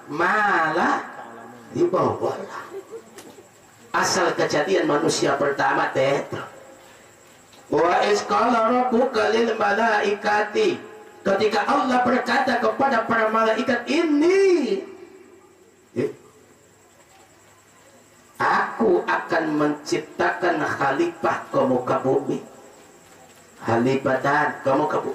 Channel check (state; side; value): identical; both; correlation 1.00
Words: ma la ta'lamun. Asal kejadian manusia pertama teh. Wa iz qala rabbuka lil malaikati, ketika Allah berkata kepada para malaikat, ini aku akan menciptakan khalifah ke muka bumi. Khalifatan ke muka